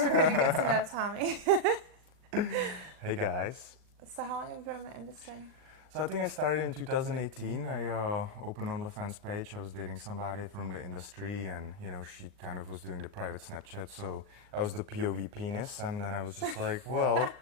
we're gonna get to know Tommy. Hey guys. So, how long have you been in the industry? So I think I started in 2018. I opened OnlyFans page. I was dating somebody from the industry, and she kind of was doing the private Snapchat. So I was the POV penis, and then I was just like, well,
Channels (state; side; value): late; left; 39 ms